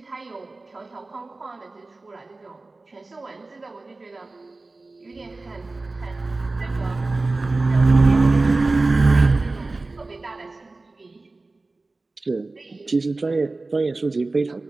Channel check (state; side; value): quieter; left; 3.3 dB